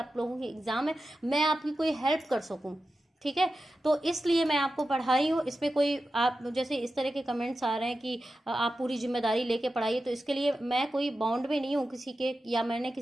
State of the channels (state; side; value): normal; both; correlation 0.92